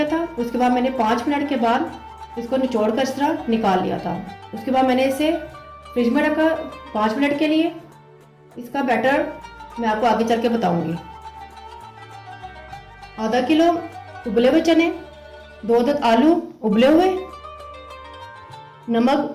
था। उसके बाद मैंने 5 मिनट के बाद इसको निचोड़ कर इस तरह निकाल लिया था। उसके बाद मैंने इसे फ्रिज में रखा 5 मिनट के लिए। इसका बैटर मैं आपको आगे चल के बताऊंगी। आधा किलो उबले हुए चने, 2 अदद आलू उबले हुए, नमक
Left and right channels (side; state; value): both; identical; correlation 1.00